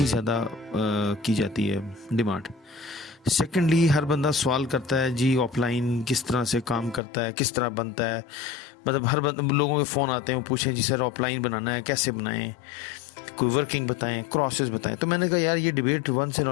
ज़्यादा की जाती है डिमांड। सेकेंडली, हर बंदा सवाल करता है जी ऑफलाइन किस तरह से काम करता है, किस तरह बनता है। मतलब हर लोगों के फ़ोन आते हैं, वो पूछें जी सर ऑफलाइन बनाना है कैसे बनाएं, कोई वर्किंग बताएं, क्रॉसेस बताएं। तो मैंने कहा यार ये debate once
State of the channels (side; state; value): right; drops out; at 7.0 s